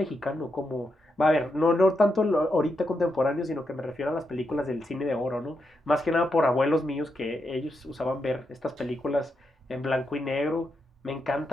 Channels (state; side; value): normal; both; correlation 0.83